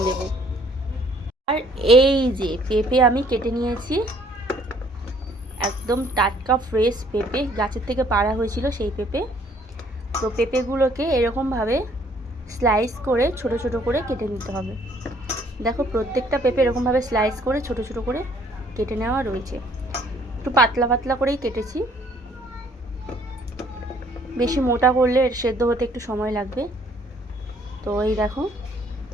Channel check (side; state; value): both; normal; correlation 0.61